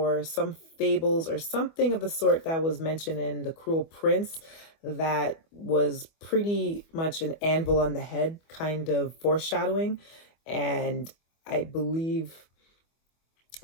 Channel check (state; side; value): late; right; 25 ms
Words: some fables or something of the sort that was mentioned in The Cruel Prince that was pretty much an anvil on the head kind of foreshadowing. And I believe